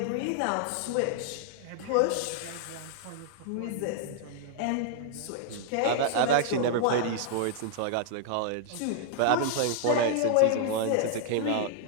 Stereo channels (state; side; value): different; both; correlation -0.01